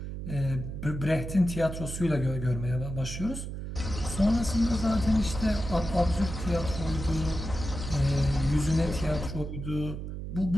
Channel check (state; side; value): noise; right; hum, 7 dB below the sound